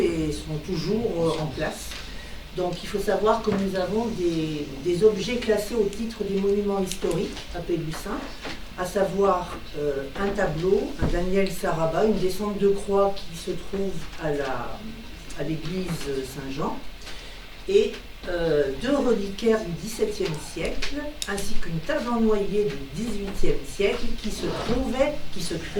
sont toujours en place. Donc il faut savoir que nous avons des objets classés au titre des monuments historiques à Pélussin, à savoir un tableau, un Daniel Saraba, une descente de croix qui se trouve à l'église Saint-Jean, et deux reliquaires du XVIIe siècle, ainsi qu'une table en noyer du XVIIIe siècle qui se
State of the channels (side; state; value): both; identical; correlation 1.00